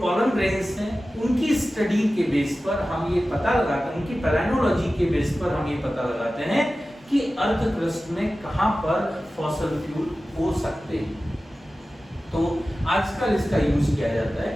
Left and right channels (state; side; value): normal; both; correlation 0.95